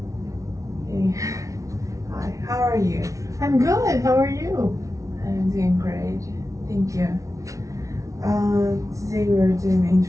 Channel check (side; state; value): left; late; 0.16 ms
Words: Hey. Hi, how are you? I'm good. How are you? I'm doing great, thank you. Today we're doing an